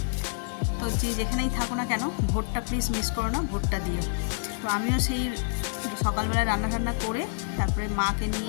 তো যেখানেই থাকো না কেন, ভোটটা প্লিজ মিস করো না, ভোটটা দিও। তো আমিও সেই সকালবেলায় রান্না করে তারপরে মাকে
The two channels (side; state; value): right; silent; digital silence